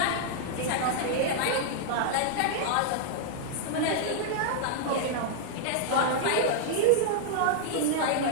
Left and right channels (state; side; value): different; both; correlation -0.01